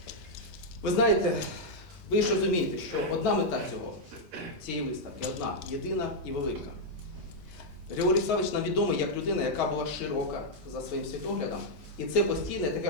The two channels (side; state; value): both; normal; correlation -0.03